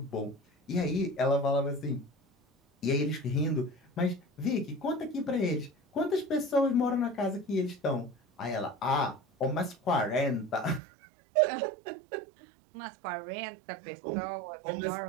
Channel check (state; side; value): drops out; left; at 10.8 s